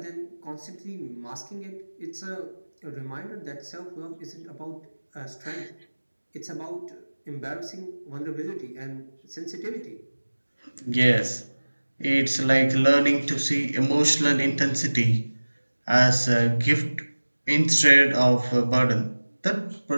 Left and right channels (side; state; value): both; inverted; correlation -1.00